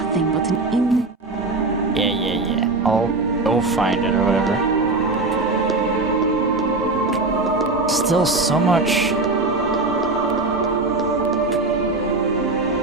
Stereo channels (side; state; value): left; quieter; 3.3 dB